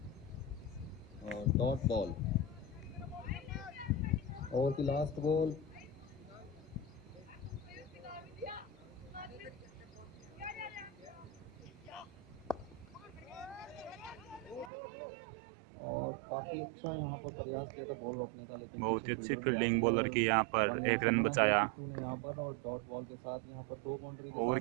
और डॉट बॉल, ओवर की लास्ट बॉल। और काफी अच्छा यहाँ पर प्रयास किया था बॉल रोकने का, लेकिन बहुत ही अच्छी फील्डिंग बॉलर की यहाँ पर। 1 रन बचाया। यहाँ पर और डॉट बॉल के साथ यहाँ पर 2 बाउंड्री। ओवर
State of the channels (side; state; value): left; drops out; at 14.7 s